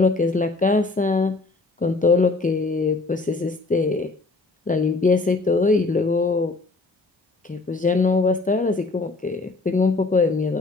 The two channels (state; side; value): quieter; right; 3.5 dB